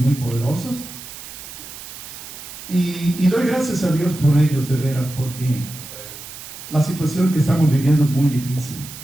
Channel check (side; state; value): right; noise; hiss, 13 dB below the sound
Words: poderosos, y doy gracias a Dios por ellos, de veras, porque la situación que estamos viviendo es muy difícil